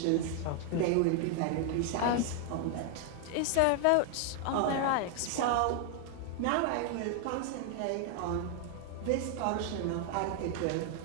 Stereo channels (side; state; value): both; different; correlation 0.00